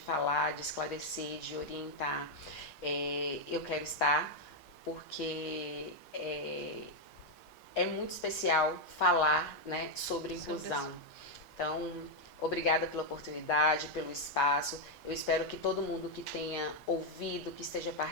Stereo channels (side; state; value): right; late; 5.6 ms